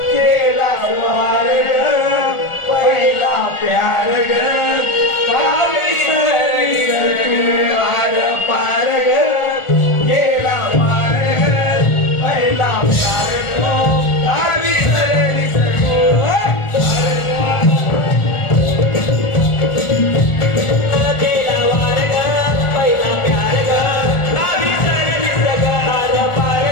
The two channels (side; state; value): right; late; 1.4 ms